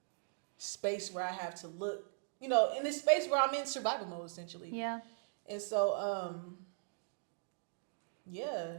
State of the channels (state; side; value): silent; left; digital silence